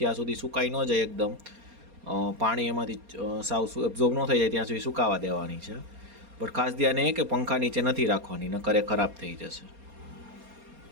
સુધી સુકાઈ ન જાય એકદમ, પાણી એમાંથી સાવ એબ્ઝોર્બ ન થઈ જાય ત્યાં સુધી સુકાવા દેવાની છે. પણ ખાસ ધ્યાન એ કે પંખા નીચે નથી રાખવાની, નકર એ ખરાબ થઈ જશે.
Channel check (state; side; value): late; left; 4.3 ms